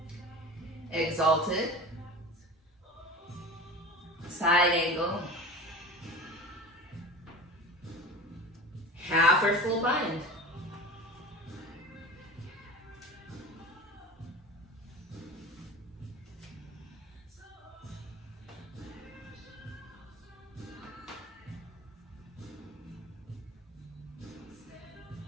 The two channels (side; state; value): both; normal; correlation 0.34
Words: Exalted. Side angle. Half or full bind.